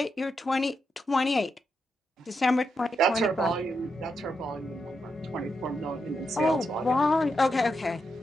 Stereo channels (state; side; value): normal; both; correlation 0.84